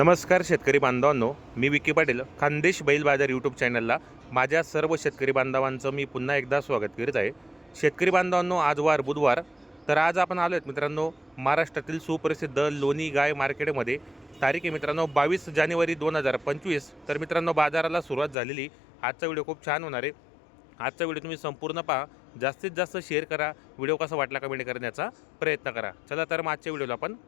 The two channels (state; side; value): drops out; right; at 18.4 s